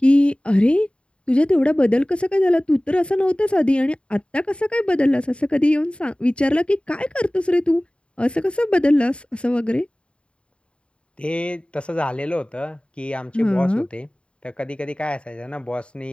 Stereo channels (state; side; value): late; right; 0.057 ms